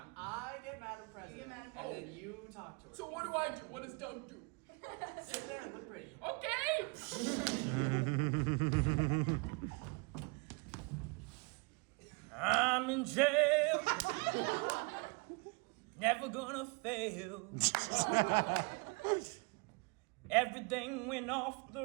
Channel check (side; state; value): left; quieter; 30.4 dB